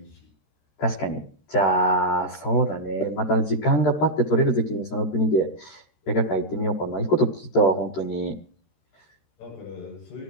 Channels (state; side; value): late; right; 13 ms